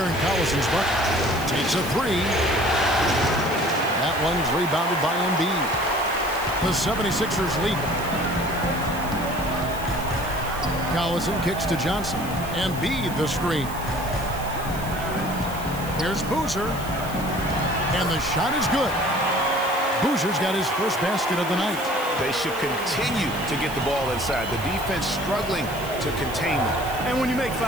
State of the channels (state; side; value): noise; right; hiss, 15 dB below the sound